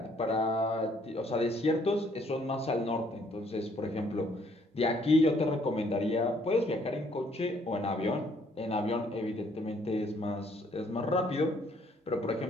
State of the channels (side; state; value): both; normal; correlation 0.65